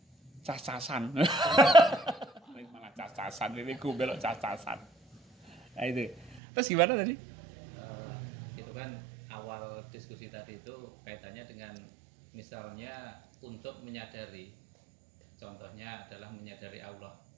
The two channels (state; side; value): drops out; left; at 6.4 s